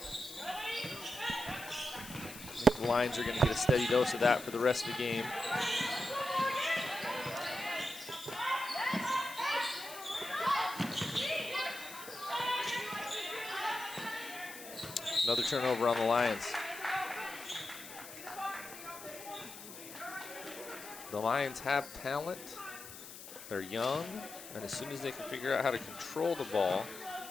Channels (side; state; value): left; noise; hiss, 13 dB below the sound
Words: The Lions are going to get a steady dose of that for the rest of the game. Another turnover on the Lions. The Lions have talent. They're young, and as soon as they can figure out how to control the ball,